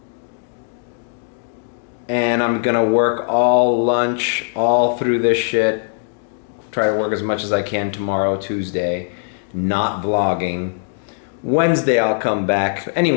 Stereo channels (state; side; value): silent; right; digital silence